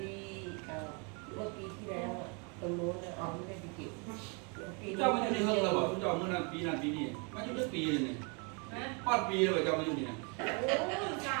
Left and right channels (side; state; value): left; quieter; 34.1 dB